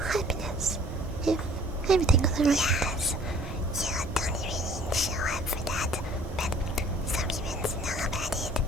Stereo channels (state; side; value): normal; both; correlation 0.54